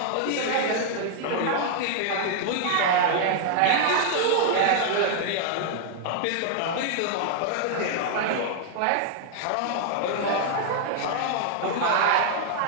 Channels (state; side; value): different; both; correlation -0.01